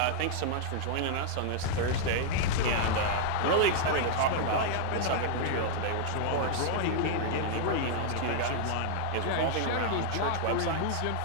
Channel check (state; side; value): different; both; correlation -0.01